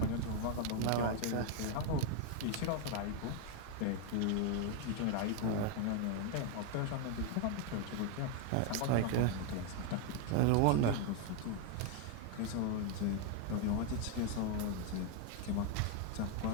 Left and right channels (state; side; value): different; both; correlation 0.01